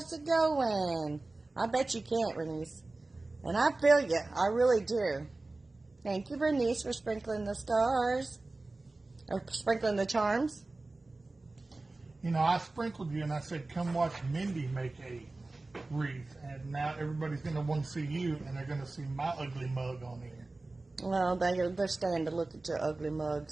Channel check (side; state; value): left; quieter; 3.2 dB